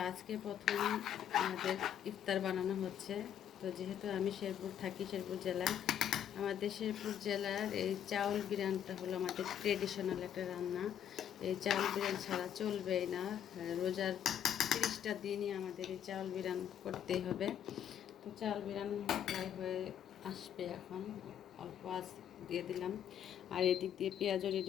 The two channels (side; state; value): right; quieter; 9.7 dB